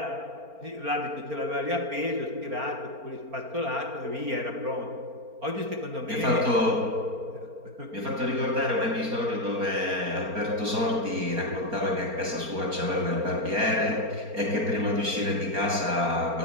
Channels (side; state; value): left; late; 4.4 ms